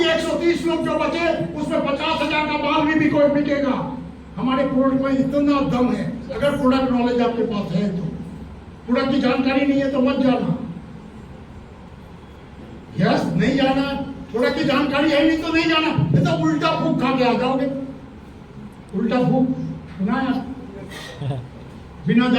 130 लोग जो बचे, उसमें 50,000 का माल भी कोई बिकेगा। हमारे प्रोडक्ट में इतना दम है। अगर प्रोडक्ट नॉलेज आपके पास है तो, प्रोडक्ट की जानकारी नहीं है तो मत जाना। यस, नहीं जाना। प्रोडक्ट की जानकारी है नहीं तो नहीं जाना, नहीं तो उल्टा फूक खा के आ जाओगे। उल्टा भूख सुना है? बिना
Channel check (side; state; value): both; identical; correlation 1.00